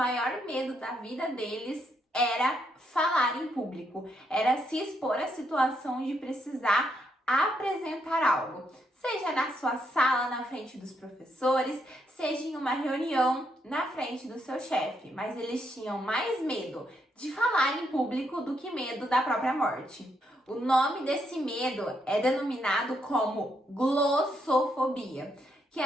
medo da vida deles era falar em público, era se expor à situação de precisar apresentar algo, seja na sua sala, na frente dos professores, seja em uma reunião na frente do seu chefe, mas eles tinham mais medo de falar em público do que medo da própria morte. O nome desse medo é denominado como glossofobia, que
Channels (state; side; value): normal; both; correlation 0.77